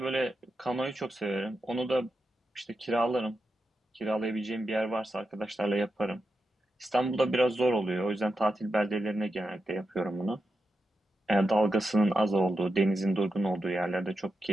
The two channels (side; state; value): both; normal; correlation 0.88